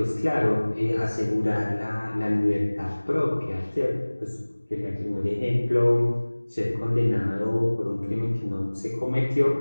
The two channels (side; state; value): both; inverted; correlation -1.00